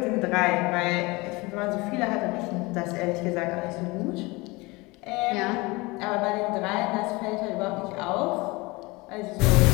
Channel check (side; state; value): right; quieter; 23.9 dB